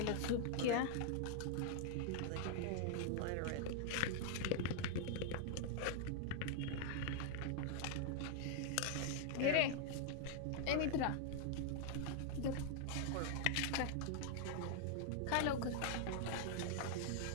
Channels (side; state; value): both; different; correlation 0.00